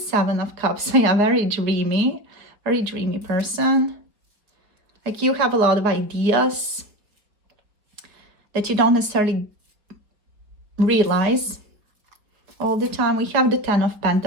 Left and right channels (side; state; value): left; late; 4.6 ms